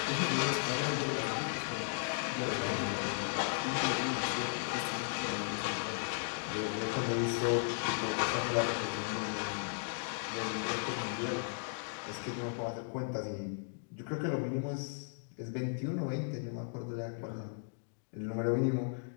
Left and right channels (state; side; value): silent; right; digital silence